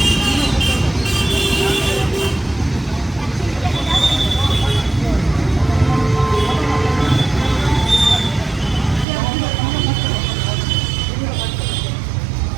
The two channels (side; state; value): left; drops out; at 9.1 s